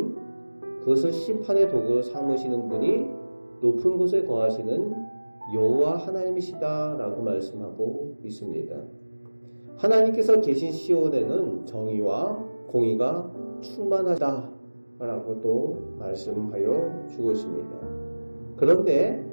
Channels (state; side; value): inverted; both; correlation -1.00